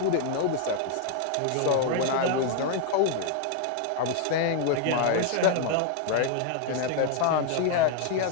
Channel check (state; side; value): different; both; correlation 0.00